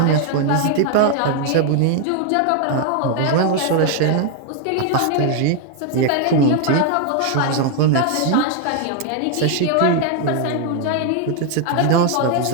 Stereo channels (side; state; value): both; different; correlation 0.00